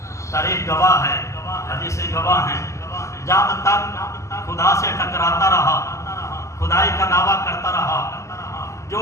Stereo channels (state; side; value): late; right; 0.14 ms